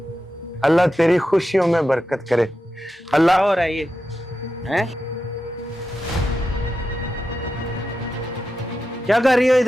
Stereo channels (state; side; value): normal; both; correlation 0.90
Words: अल्लाह तेरी खुशियों में बरकत करे। अल्लाह। हो रहा है ये हैं? क्या कर रही हो